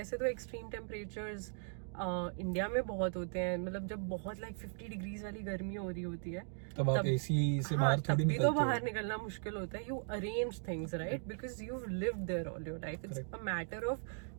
तो extreme temperatures इंडिया में बहुत होते हैं, मतलब जब बहुत लाइक 50 डिग्रीज वाली गर्मी हो रही होती है, तब आप एसी से हाँ, बाहर थोड़ी तब भी निकलते तो हो. बाहर निकलना मुश्किल होता है. You arrange things right, because you lived there all your life. It's a matter of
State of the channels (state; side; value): silent; left; 52 dB below the other